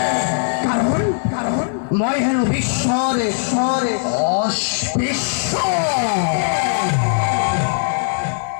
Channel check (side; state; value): right; silent; 58 dB below the other